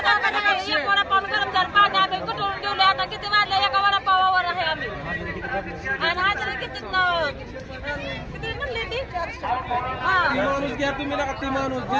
वडापाव गरम झालं, पाणी आम्ही कुठून ठेवले. आता किती वाजले, एका वडापावावर आहे आम्ही. आणि हाजरी किती म्हणली ती माणूस घ्या तुम्ही नका, ती माणूस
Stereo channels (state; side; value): identical; both; correlation 1.00